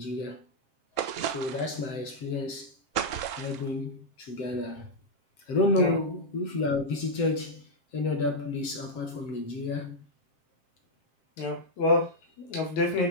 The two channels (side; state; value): right; late; 7.7 ms